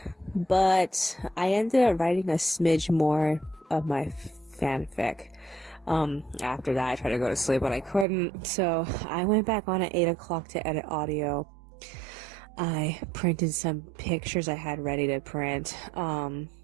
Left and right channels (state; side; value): drops out; left; at 8.1 s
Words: but I ended up writing a smidge more of my fanfic. After that, I tried to go to sleep, but I couldn't. So I went back on at 8 o'clock to edit audio. I printed some pictures I had ready to print.